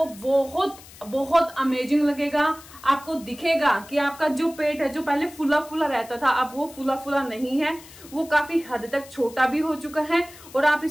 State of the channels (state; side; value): noise; left; hiss, 20 dB below the sound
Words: बहुत बहुत अमेजिंग लगेगा। आपको दिखेगा कि आपका जो पेट है, जो पहले फुला फुला रहता था, अब वो फुला फुला नहीं है, वो काफी हद तक छोटा भी हो चुका है और आप